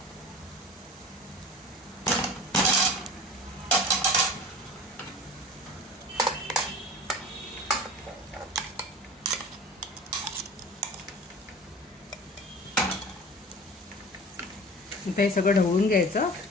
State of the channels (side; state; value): both; normal; correlation 0.39